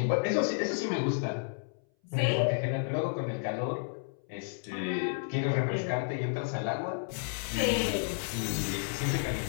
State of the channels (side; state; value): right; silent; 57 dB below the other